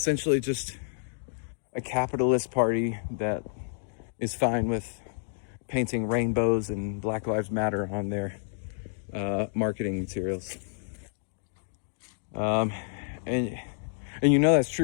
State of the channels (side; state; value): right; silent; digital silence